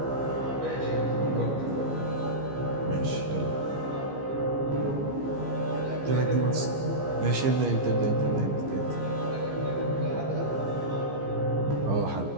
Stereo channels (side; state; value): left; late; 15 ms